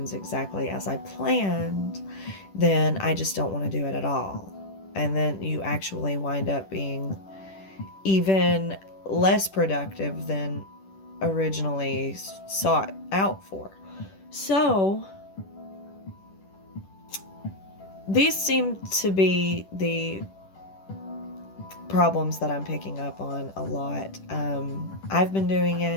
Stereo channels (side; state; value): right; late; 10 ms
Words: exactly as I planned, then I just don't want to do it at all. And then you actually wind up being even less productive than originally sought out for. So, these seem to be the problems that I'm picking up on a lot. I've been doing